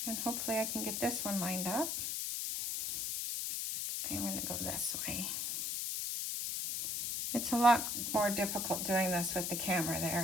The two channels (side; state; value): left; noise; hiss, 1 dB below the sound